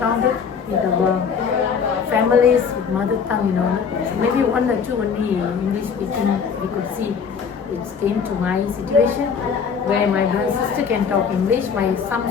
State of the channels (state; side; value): quieter; right; 6.3 dB